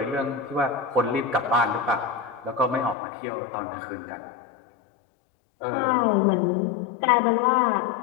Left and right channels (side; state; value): right; drops out; at 3.0 s